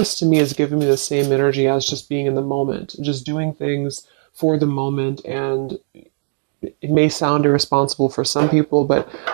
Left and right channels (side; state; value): left; silent; 62 dB below the other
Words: to me is giving me the same energy as just being in the moment, just doing things for the moment. And it may sound irresponsible for some people, but